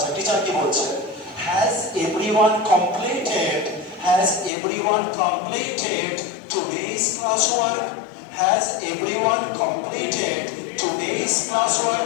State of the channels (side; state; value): right; drops out; at 4.5 s